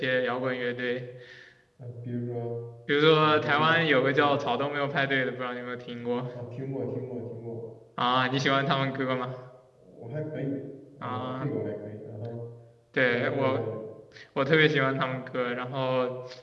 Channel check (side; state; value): both; identical; correlation 1.00